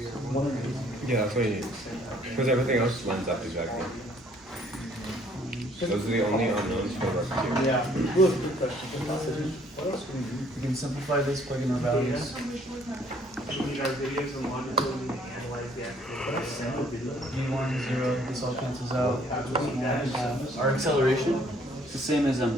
Yeah, that's what you need. Because everything else lines up exactly. Those are the only unknowns for rocketeer. Yeah. Good question. What else can we do? We can simplify this, plug in our values. We need our videos and longitude and analyze the actual. V1, 0, this all cancels out. Our acceleration is the same as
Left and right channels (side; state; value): both; normal; correlation 0.61